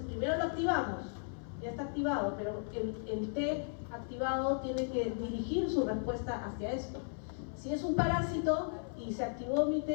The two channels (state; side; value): silent; right; 54 dB below the other